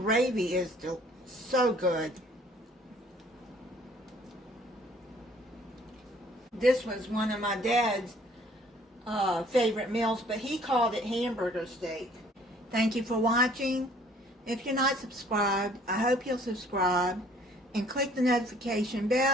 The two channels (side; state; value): both; normal; correlation 0.57